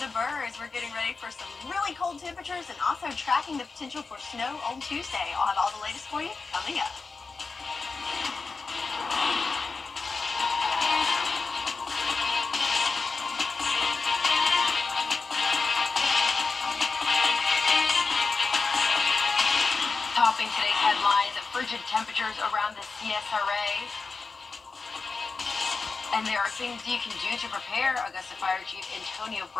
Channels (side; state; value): right; quieter; 4.3 dB